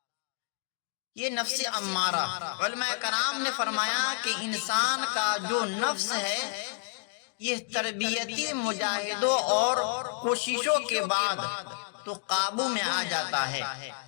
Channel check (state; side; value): silent; right; 58 dB below the other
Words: یہ نفس امارہ، علماء کرام نے فرمایا کہ انسان کا جو نفس ہے یہ تربیتی مجاہدوں اور کوششوں کے بعد تو قابو میں آ جاتا ہے۔